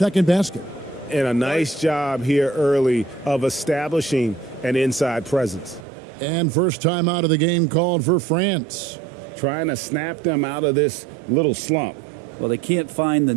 basket. And a nice job here early of establishing an inside presence. And first time out of the game called for France. Trying to snap them out of this little slump. Well, they can't find the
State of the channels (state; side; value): drops out; left; at 5.9 s